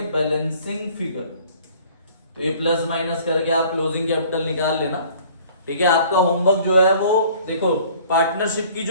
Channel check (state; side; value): inverted; both; correlation -0.53